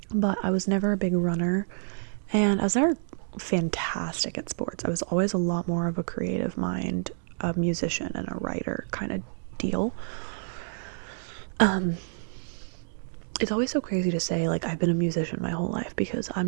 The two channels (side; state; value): left; silent; digital silence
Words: but I was never a big runner, and I was never fantastic at sports. I was always a lot more of a creative mind, a musician and a writer kind of deal. It's always so crazy to say, like, I've been a musician my whole life, because I'm